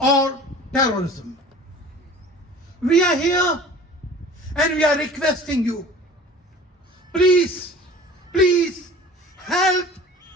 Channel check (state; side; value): normal; both; correlation 0.43